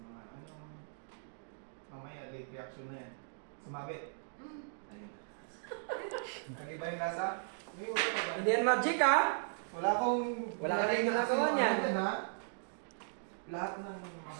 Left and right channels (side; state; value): left; silent; digital silence